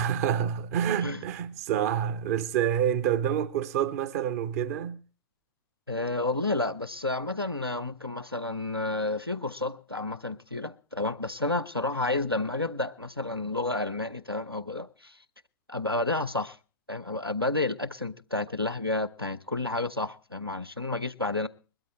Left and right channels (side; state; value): both; normal; correlation -0.18